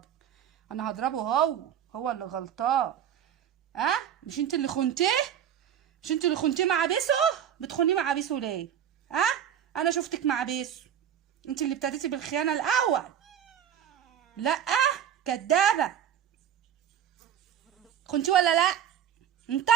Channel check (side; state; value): left; quieter; 9.4 dB